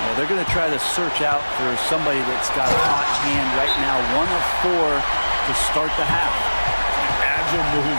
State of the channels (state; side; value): inverted; both; correlation -1.00